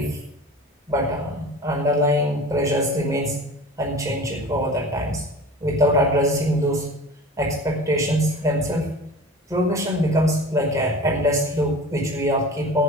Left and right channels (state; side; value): normal; both; correlation 0.37